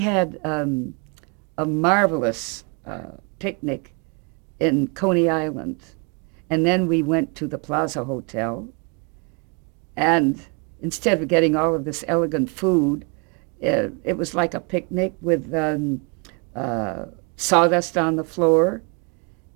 a marvelous picnic in Coney Island, and then we went to the Plaza Hotel, and instead of getting all of this elegant food, it was like a picnic with sawdust on the floor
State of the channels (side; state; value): left; quieter; 33.7 dB